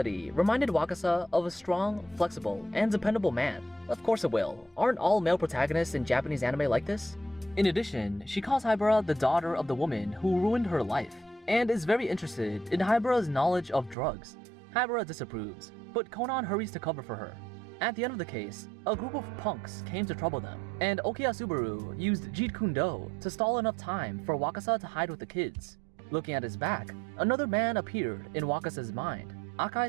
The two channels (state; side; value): drops out; left; at 14.0 s